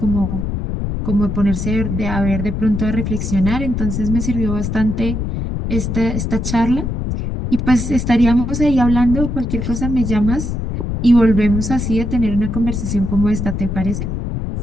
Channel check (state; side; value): noise; left; rumble, 3 dB below the sound